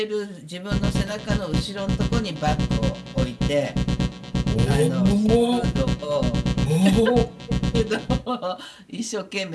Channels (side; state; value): both; identical; correlation 1.00